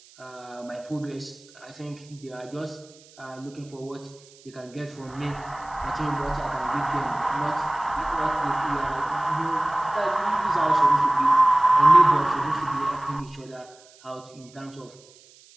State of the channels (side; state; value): right; noise; hiss, 26 dB below the sound